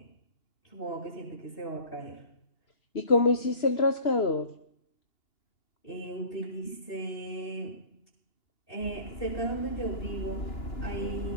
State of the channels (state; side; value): late; right; 3.0 ms